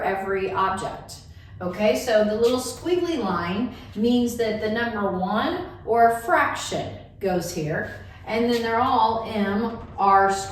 every object. Okay, so the little squiggly line means that the number 1 or a fraction goes here. And then they're all mr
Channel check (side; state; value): both; identical; correlation 1.00